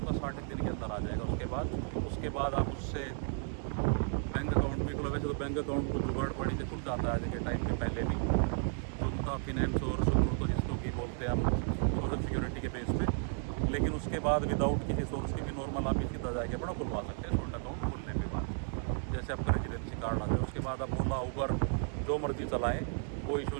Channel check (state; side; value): silent; left; 55 dB below the other